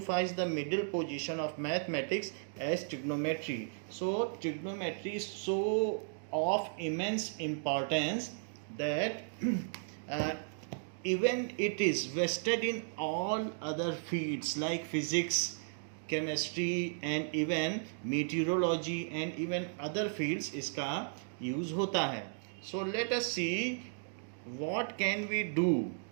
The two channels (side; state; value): left; silent; digital silence